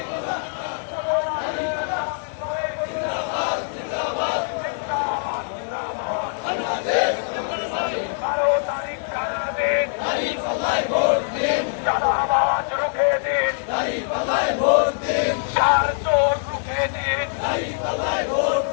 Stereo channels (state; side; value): silent; right; digital silence